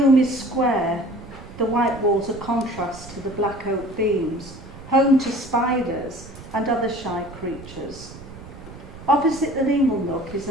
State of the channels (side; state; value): right; noise; rumble, 16 dB below the sound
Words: is square, the white walls a contrast to the black oak beams, home to spiders and other shy creatures. Opposite the inglenook is